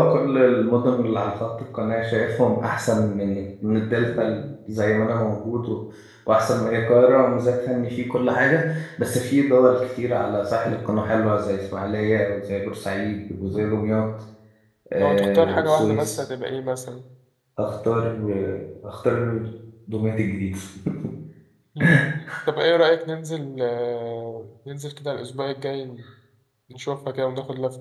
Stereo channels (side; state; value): both; identical; correlation 1.00